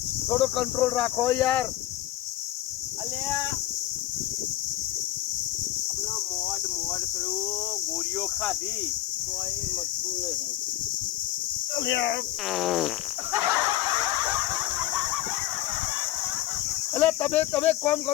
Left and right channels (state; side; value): quieter; right; 14.3 dB